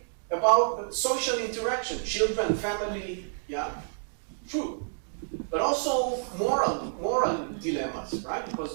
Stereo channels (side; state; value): left; silent; digital silence